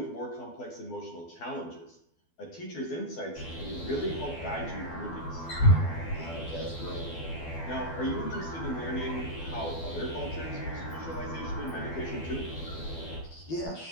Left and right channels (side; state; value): right; late; 12 ms